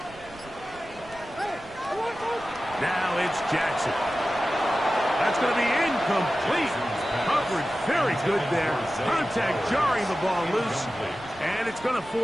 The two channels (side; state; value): right; noise; rumble, 21 dB below the sound